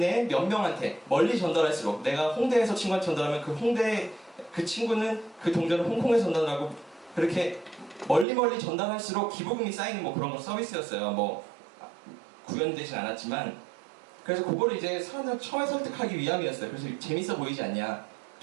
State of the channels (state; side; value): drops out; left; at 8.2 s